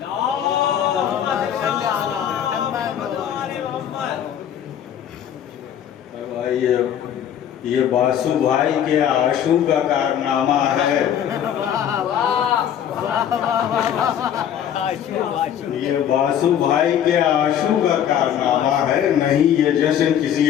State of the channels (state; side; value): quieter; right; 9.7 dB